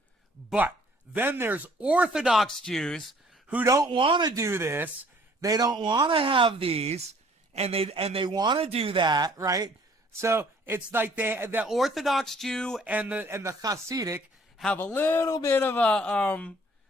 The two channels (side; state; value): both; normal; correlation 0.58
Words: But then there's Orthodox Jews who don't want to do this. They don't want to have these, and they want to do that, right? So it's like the Orthodox Jew and the Hasidic have a little bit of